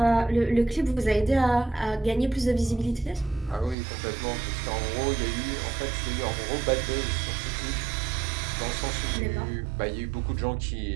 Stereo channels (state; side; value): drops out; left; at 3.8 s